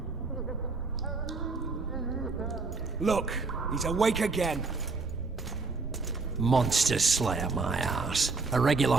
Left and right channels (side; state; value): left; quieter; 4.0 dB